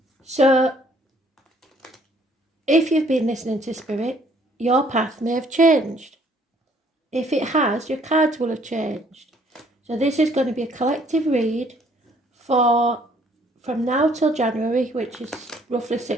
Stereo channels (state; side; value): normal; both; correlation 0.62